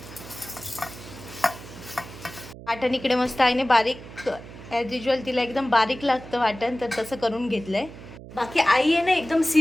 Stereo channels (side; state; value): right; noise; hum, 15 dB below the sound